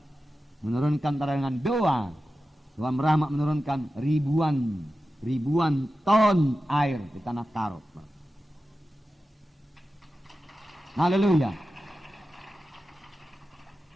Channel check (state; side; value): normal; both; correlation 0.93